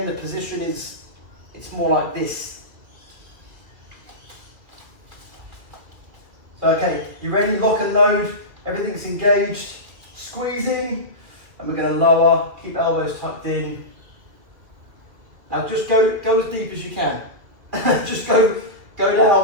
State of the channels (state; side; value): late; left; 2.4 ms